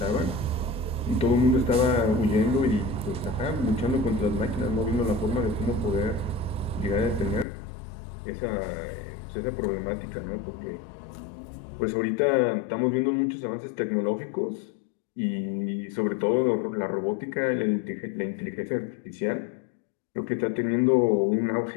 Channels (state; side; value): drops out; right; at 7.5 s